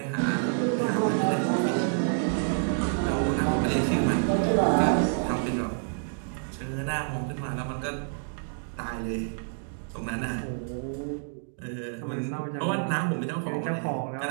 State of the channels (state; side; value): silent; left; digital silence